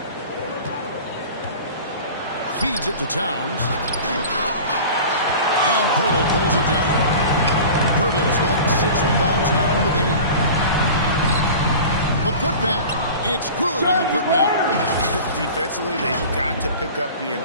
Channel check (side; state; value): both; inverted; correlation -0.38